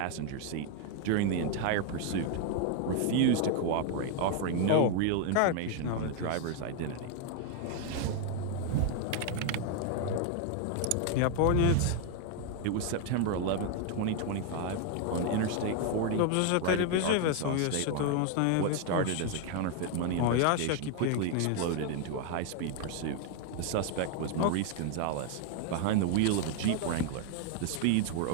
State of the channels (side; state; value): both; different; correlation 0.00